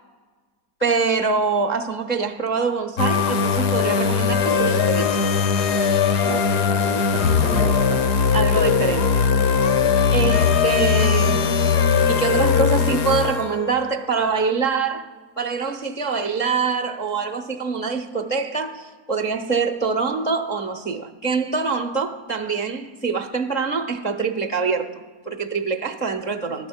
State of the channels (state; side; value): late; right; 4.9 ms